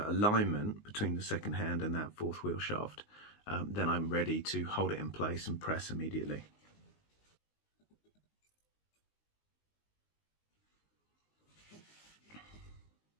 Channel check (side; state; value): right; late; 19 ms